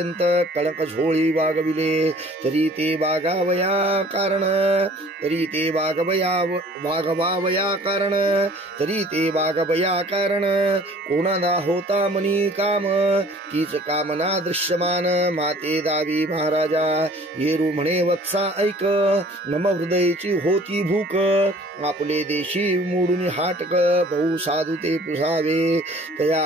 कळक झोळी वागविले तरी ते वागावया कारण. तरी ते वागवावया कारण. तरी ते वागवया कारण. कोणाला होता मनी काम तीच कामना दृश्यमान. माते दावी महाराजा येरू म्हणे वत्सा ऐक. नम हृदयची होती भूक. आपले देशी मोडून हाटक बहु साधू ते पुसावे.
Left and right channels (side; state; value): both; normal; correlation 0.52